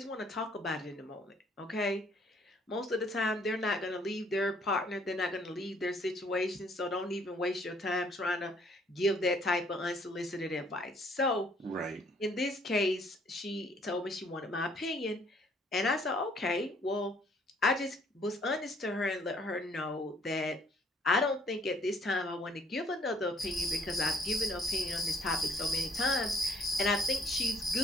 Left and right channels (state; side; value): normal; both; correlation 0.63